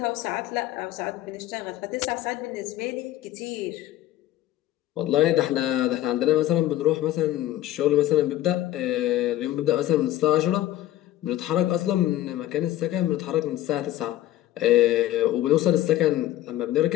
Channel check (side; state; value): right; quieter; 14.0 dB